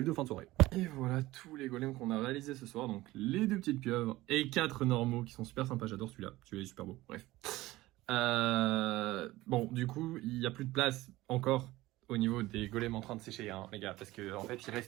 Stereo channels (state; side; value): quieter; left; 18.0 dB